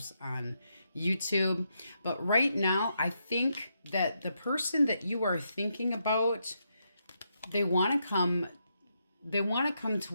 on YouTube. But right now, I think that the person that you are thinking about, they want to come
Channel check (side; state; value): both; inverted; correlation -0.81